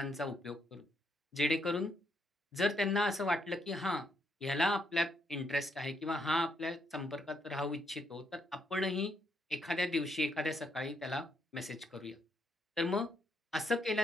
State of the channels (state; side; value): normal; both; correlation 0.75